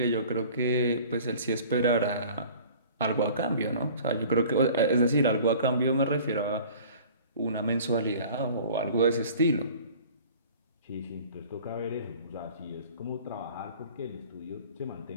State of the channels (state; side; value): inverted; both; correlation -0.46